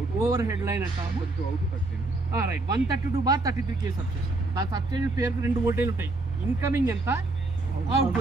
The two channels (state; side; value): quieter; left; 3.1 dB